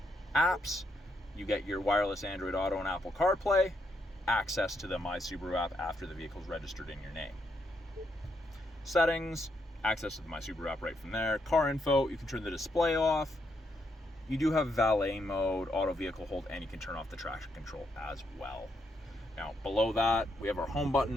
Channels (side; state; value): both; normal; correlation 0.78